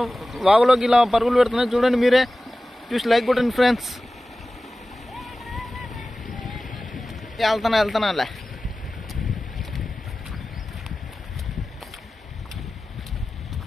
వాగులోకి ఇలా పరుగులు పెడుతున్నాయి. చూడండి మీరే, చూసి లైక్ కొట్టండి ఫ్రెండ్స్. వెళ్తానా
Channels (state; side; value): normal; both; correlation 0.96